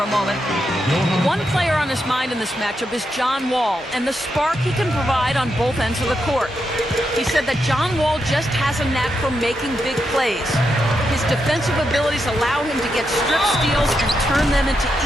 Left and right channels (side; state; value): both; normal; correlation 0.84